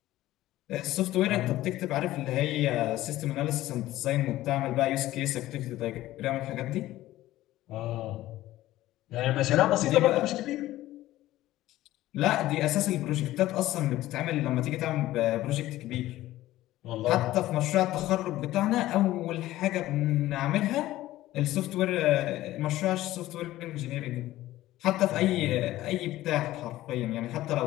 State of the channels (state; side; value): quieter; right; 15.5 dB